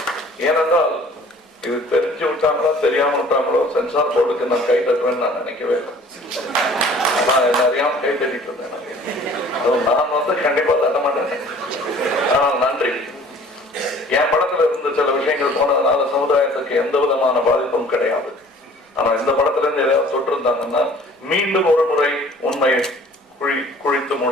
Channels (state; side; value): normal; both; correlation 0.51